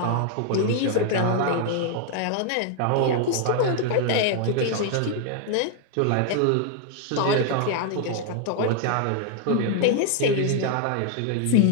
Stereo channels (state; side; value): different; both; correlation 0.00